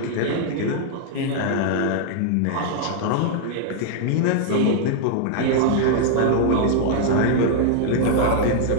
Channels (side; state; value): both; different; correlation -0.01